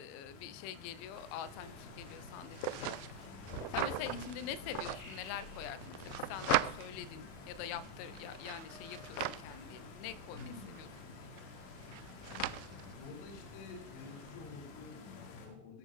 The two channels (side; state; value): right; late; 35 ms